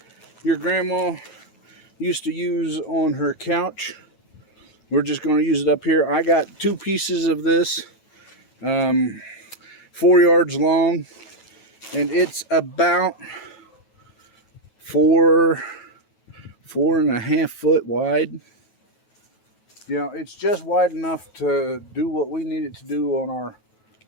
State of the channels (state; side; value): late; right; 9.2 ms